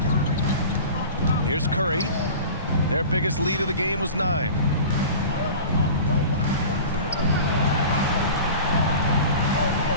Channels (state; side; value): inverted; both; correlation -0.37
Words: Here's Curry. Their biggest lead of the game was 9.